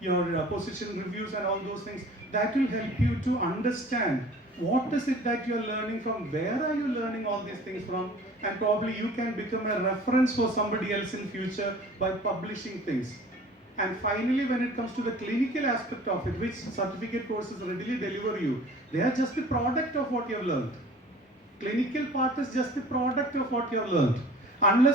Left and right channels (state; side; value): normal; both; correlation 0.46